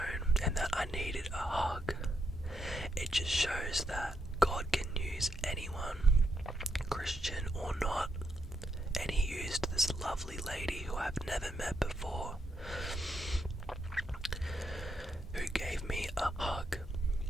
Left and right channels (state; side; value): normal; both; correlation 0.80